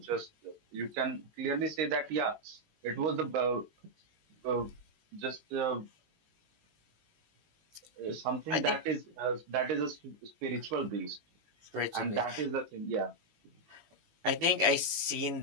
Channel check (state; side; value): late; left; 18 ms